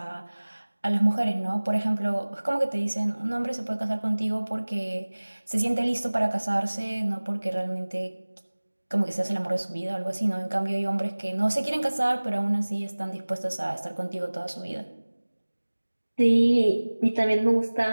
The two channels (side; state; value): both; inverted; correlation -1.00